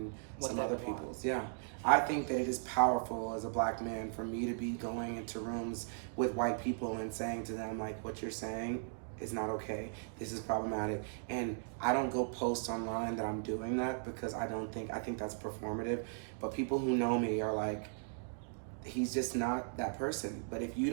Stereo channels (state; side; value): silent; left; digital silence